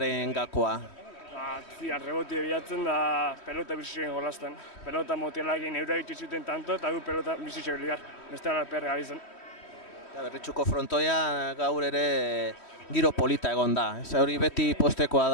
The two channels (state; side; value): late; right; 3.1 ms